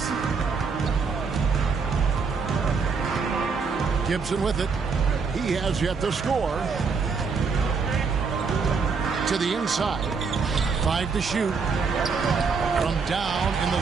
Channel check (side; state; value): left; quieter; 5.1 dB